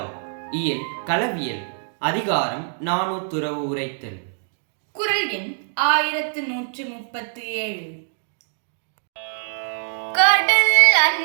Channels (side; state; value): left; silent; digital silence